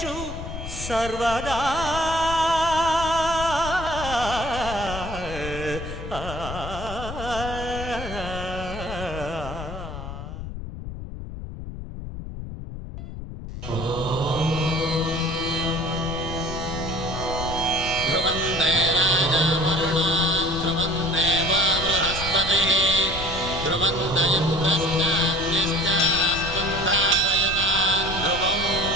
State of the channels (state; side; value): noise; left; rumble, 9 dB below the sound